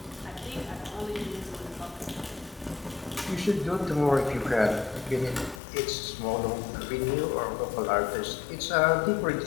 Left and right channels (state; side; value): drops out; right; at 5.6 s